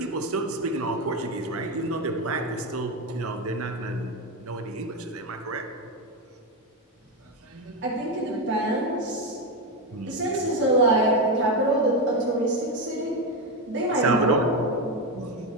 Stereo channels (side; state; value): both; normal; correlation 0.10